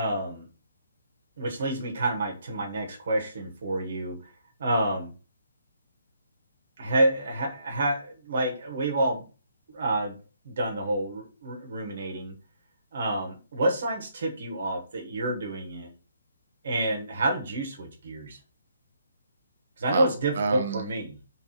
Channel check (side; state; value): both; inverted; correlation -0.73